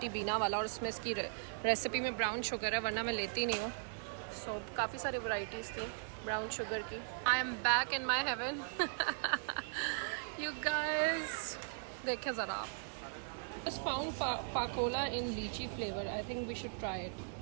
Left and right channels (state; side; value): silent; left; 52 dB below the other